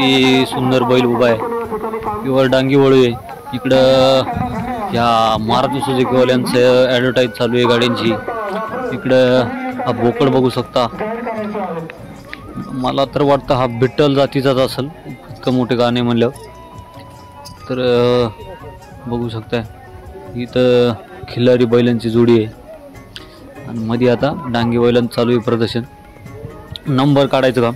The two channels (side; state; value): both; identical; correlation 1.00